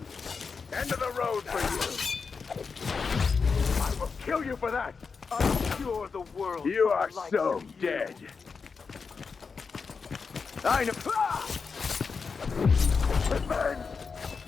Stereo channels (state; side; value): quieter; right; 5.2 dB